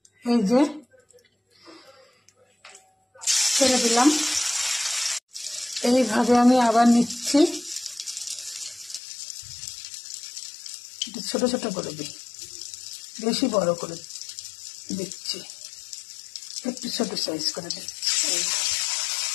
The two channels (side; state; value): right; drops out; at 9.0 s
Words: এই যে ছেড়ে দিলাম। এইভাবে আমি আবার নিচ্ছি, ছোট ছোট করে দিই, বেশি বড় করে দিচ্ছি, একটু ছোট সাইজ করে দিচ্ছি,